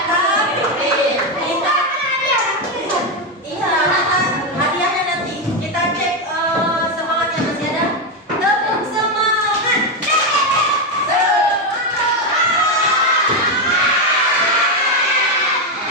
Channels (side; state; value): both; normal; correlation 0.07